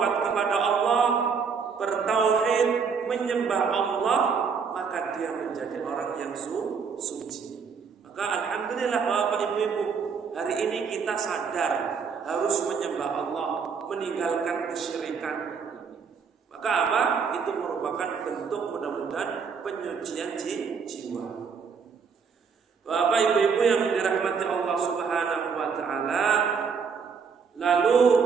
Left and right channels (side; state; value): left; quieter; 5.9 dB